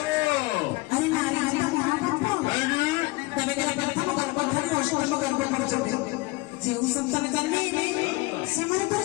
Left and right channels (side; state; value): right; quieter; 22.5 dB